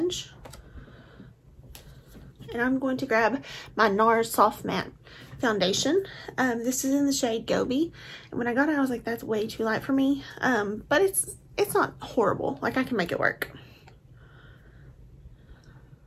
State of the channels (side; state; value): both; identical; correlation 1.00